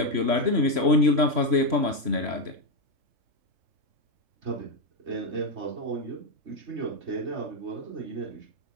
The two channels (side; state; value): left; late; 3.0 ms